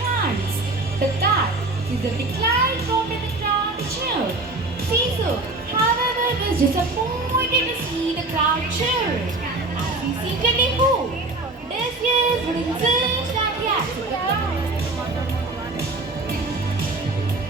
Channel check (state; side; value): quieter; left; 3.0 dB